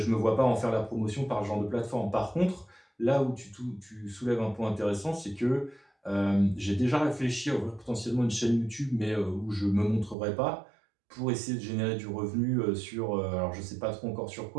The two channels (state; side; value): drops out; left; at 10.2 s